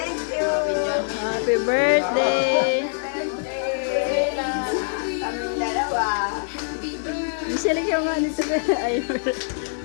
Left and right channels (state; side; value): silent; right; digital silence